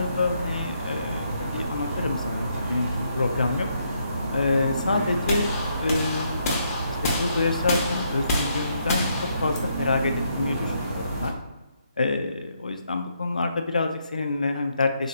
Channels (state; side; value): inverted; both; correlation -0.75